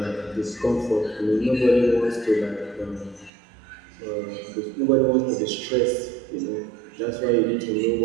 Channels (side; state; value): left; drops out; at 3.3 s